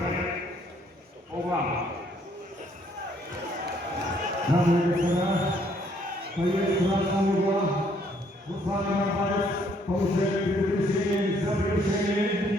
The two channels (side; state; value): both; normal; correlation 0.66